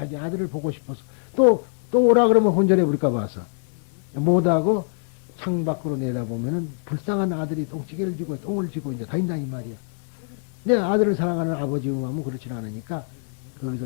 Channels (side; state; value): right; silent; 63 dB below the other